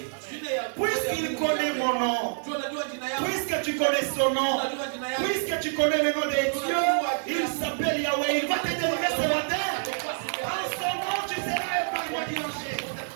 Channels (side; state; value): left; silent; digital silence